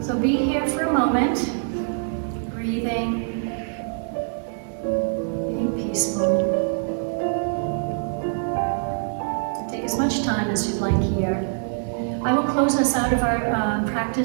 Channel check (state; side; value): silent; left; 55 dB below the other